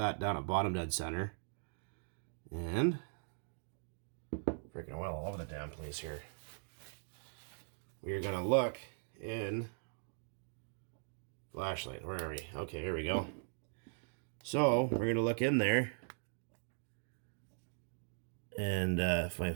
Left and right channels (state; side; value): silent; left; digital silence